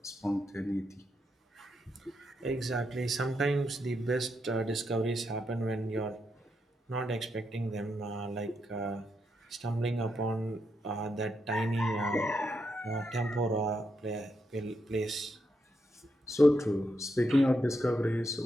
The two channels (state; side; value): normal; both; correlation 0.82